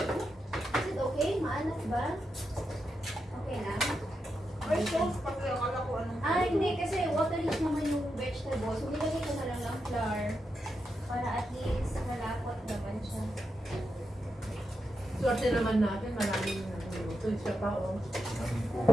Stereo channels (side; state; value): both; normal; correlation 0.86